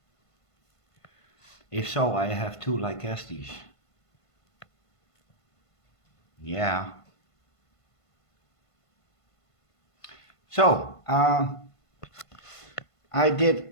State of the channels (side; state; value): right; late; 1.5 ms